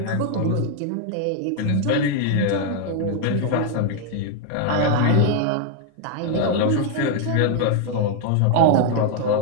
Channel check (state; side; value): different; both; correlation 0.00